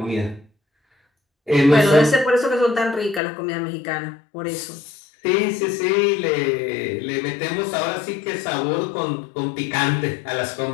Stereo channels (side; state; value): right; drops out; at 3.2 s